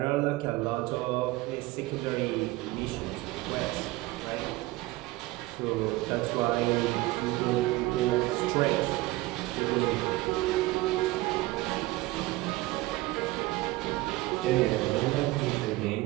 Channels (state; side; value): quieter; left; 19.4 dB